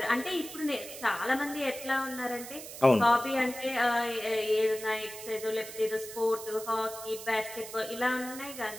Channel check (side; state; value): right; noise; hiss, 12 dB below the sound